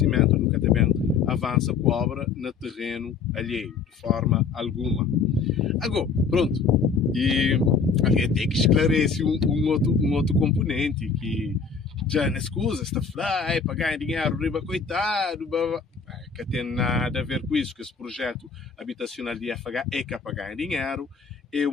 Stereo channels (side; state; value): right; quieter; 5.5 dB